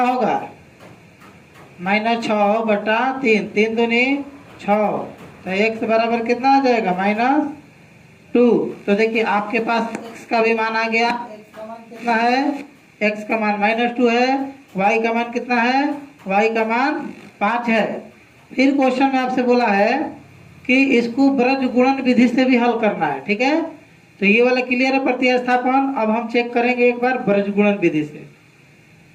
होगा -6 बटा 3। 3 दूनी 6 तो x बराबर कितना आ जाएगा -2। तो देखिए आपके पास x का भी मान आ गया। x का मान कितना है, x का मान -2 है। y का मान कितना है, y का मान 5 है। फिर क्वेश्चन में आपसे बोला है कि इसको ब्रज गुणन विधि से भी हल करना है, ठीक है। तो ये वाला क्लियर है प्रतिस्थापन। अब हम चेक करेंगे एक बार ब्रज गुणन विधि से।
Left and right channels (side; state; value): both; identical; correlation 1.00